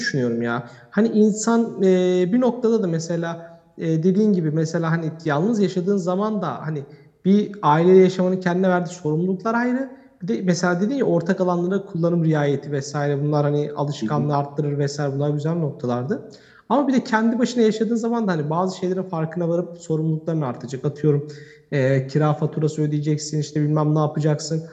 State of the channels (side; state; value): both; identical; correlation 1.00